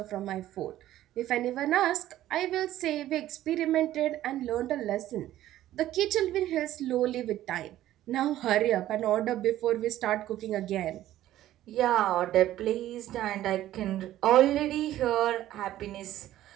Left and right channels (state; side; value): quieter; left; 13.7 dB